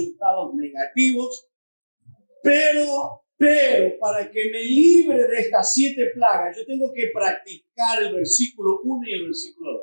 negativos, pero para que me libre de estas 7 plagas, yo tengo que practicar el versículo 1 y el versículo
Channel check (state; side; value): inverted; both; correlation -1.00